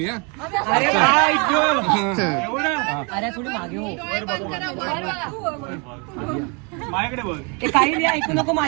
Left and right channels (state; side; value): quieter; left; 32.9 dB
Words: हा अरे अरे थोडी मागे हो. ते काही नाही ऐकू नको.